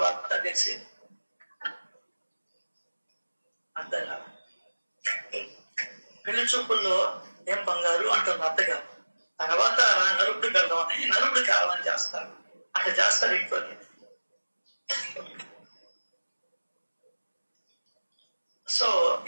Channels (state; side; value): inverted; both; correlation -1.00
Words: తెలిసి, అర్థం కదా. పెళ్లి చూపుల్లో ఏం బంగారు అంటుంది అత్తగారు. తర్వాత నలుగుడు వెళ్దామని నలుగుడు కావాలని చేస్తారు, అట్లా చేస్తారు ఇంట్లో. సో